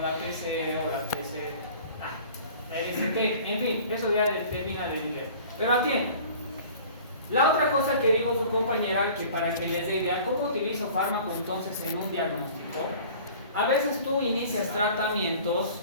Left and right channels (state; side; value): inverted; both; correlation -0.46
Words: la PC o la PC, la ST, en fin, eso ya determina el nivel. Pero atienda. La otra cosa que dijo su compañera, que para que les dé idea, ¿cómo utilizo fármaco entonces en un diagnóstico? A veces tú inicias tratamientos